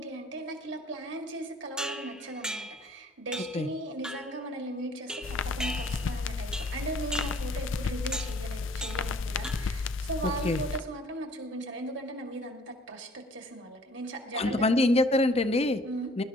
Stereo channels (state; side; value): normal; both; correlation 0.57